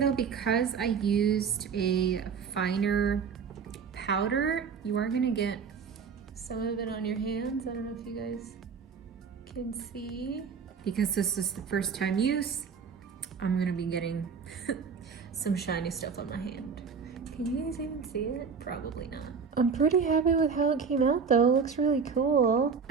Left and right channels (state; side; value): quieter; left; 5.9 dB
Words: because I used a finer powder, you are gonna get some of it on your hands. I don't know if you guys can see. Because this is the first time use, I'm gonna be getting some shiny stuff on my hand. Can you guys even see it? Probably not. I'm pretty happy with how it came out though. It looks really cool.